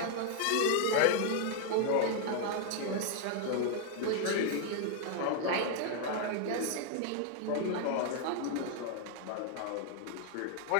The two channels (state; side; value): different; both; correlation 0.00